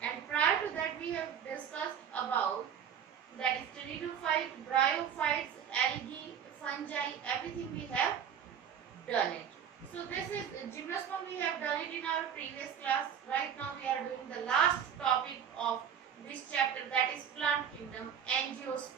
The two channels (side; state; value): left; quieter; 8.3 dB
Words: and prior to that we have discussed about that is pteridophyte, bryophytes, algae, fungi, everything we have done it. So this is gymnosperm, we have done it in our previous class. Right now we are doing the last topic of this chapter, that is plant kingdom,